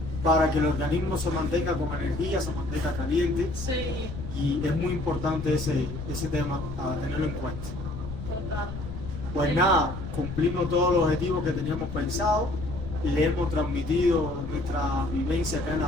para que el organismo se mantenga con energía, se mantenga caliente, sí. Sí, y es muy importante ese tema a tenerlo en cuenta. total. Pues nada, cumplimos todos los objetivos que teníamos pensado, le hemos transmitido nuestra vivencia acá en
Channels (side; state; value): left; noise; rumble, 8 dB below the sound